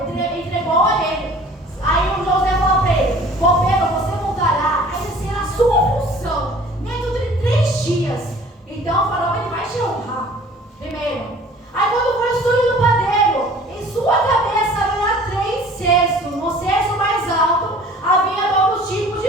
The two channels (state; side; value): normal; both; correlation 0.49